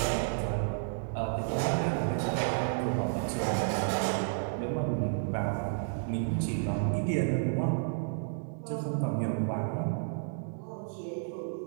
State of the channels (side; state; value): left; silent; digital silence